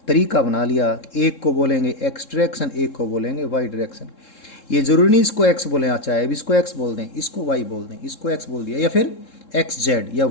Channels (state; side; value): late; right; 3.7 ms